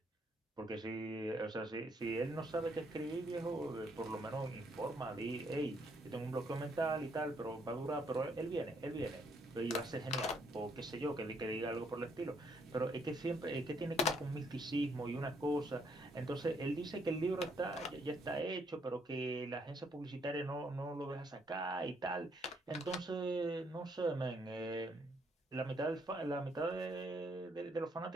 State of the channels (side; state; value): both; normal; correlation 0.71